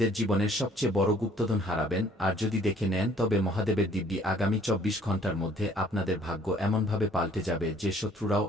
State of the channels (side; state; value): both; normal; correlation 0.58